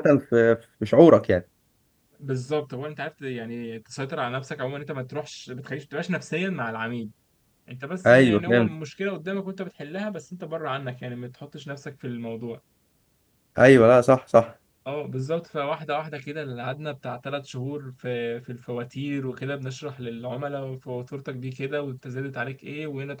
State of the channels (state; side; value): identical; both; correlation 1.00